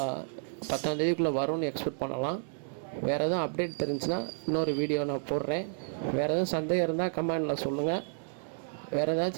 10ஆம் தேதிக்குள்ளே வரும்னு எக்ஸ்பெக்ட் பண்ணலாம். வேறு எதுவும் அப்டேட் தெரிஞ்சுன்னா இன்னொரு வீடியோ நான் போடுறேன். வேறு எதுவும் சந்தேகம் இருந்தால் கமெண்டில் சொல்லுங்கள். வேறு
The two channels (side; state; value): left; silent; 57 dB below the other